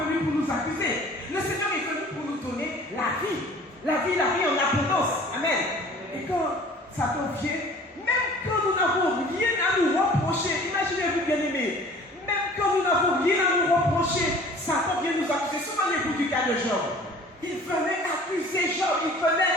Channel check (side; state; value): both; normal; correlation 0.48